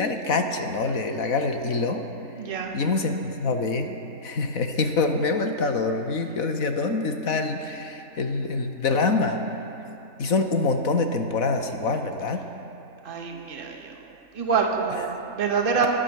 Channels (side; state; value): right; late; 4.1 ms